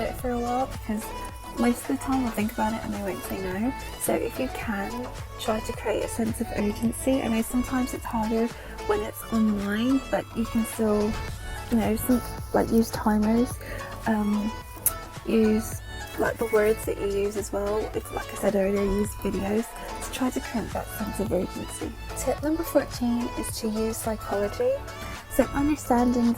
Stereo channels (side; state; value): both; identical; correlation 1.00